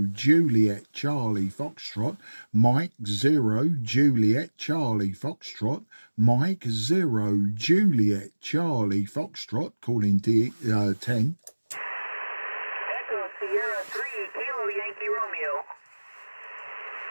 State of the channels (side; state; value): both; inverted; correlation -1.00